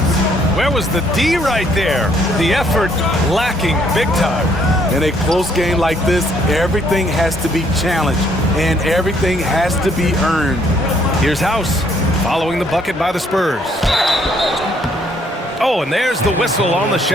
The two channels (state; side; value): normal; both; correlation 0.67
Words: Where was the D right there? The effort lacking big time. In a close game like this, everything has to be challenged and everything has to be earned. Here's House following the bucket by the Spurs. Oh, and there's the whistle on the